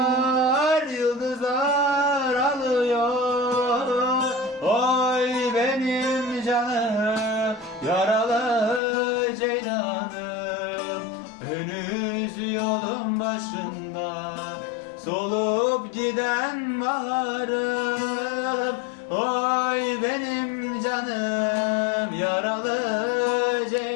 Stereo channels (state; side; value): drops out; right; at 8.8 s